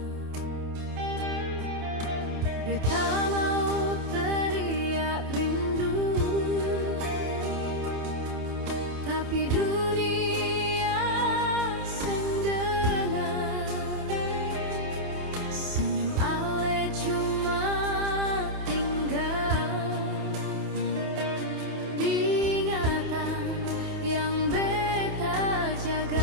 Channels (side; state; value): left; late; 28 ms